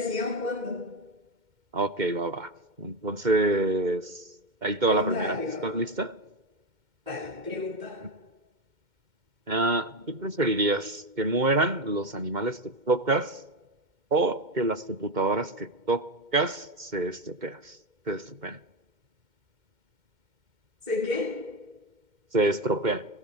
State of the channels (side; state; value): left; late; 2.1 ms